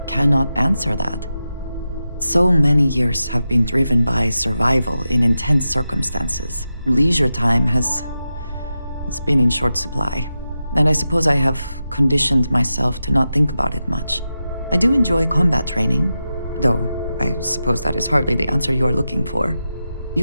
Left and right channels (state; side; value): inverted; both; correlation -0.90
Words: cannot answer that. So many years have been driven by survival in intense circumstances. Leisure time it's been in short supply. And I suppose I have conditioned myself to not think about it much. I do enjoy combat training, though I suppose that is hardly the answer you are looking for.